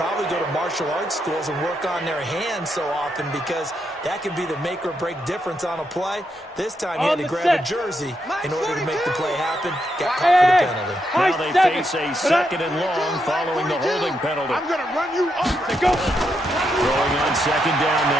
go to martial arts schools and work on their hands so often, because that can be the make or break difference on a play. This time he had to grab a jersey in order to make the play happen. Got caught for the penalty. Now they face a 2nd and long following the holding penalty. I'm going to run you off. Go. Throwing on 2nd down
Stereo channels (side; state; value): both; normal; correlation 0.81